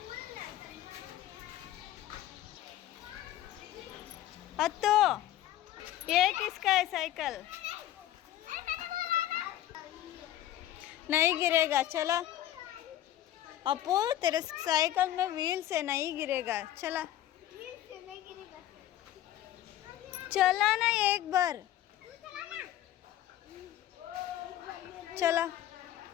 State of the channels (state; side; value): quieter; right; 13.0 dB